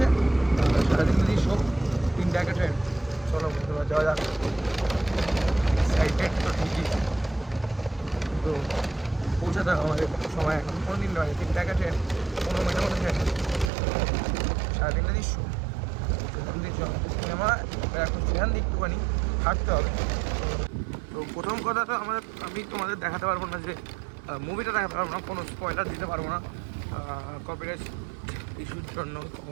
সারাদিন যদি সব 3টা একটা ট্রেন। চলো বন্ধুরা যাওয়া যাক। এক্সাইটেড তো ঠিকই, তো পৌঁছাতে হবে আমাদের সময় এখন। কোনো দিন নয়, 3টা একটা ট্রেন, 15 মিনিটের মধ্যে ট্রেন। সারাদিনটা দৃশ্য সিনেমা এখন সেখান দিয়ে একটুখানি হাঁটতে হবে। তো প্রথম কথা তো আমি তোমাদের দেখাতে পারবো না, যে মুভিটা দেখাতে পারবো না, কোনো স্পয়লার দিতে পারবো না কপিরাইট ইস্যুর জন্য।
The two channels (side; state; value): left; drops out; at 13.7 s